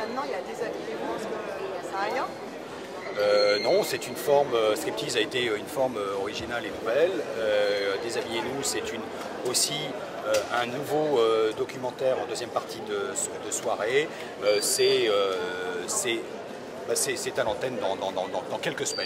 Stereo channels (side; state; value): both; identical; correlation 1.00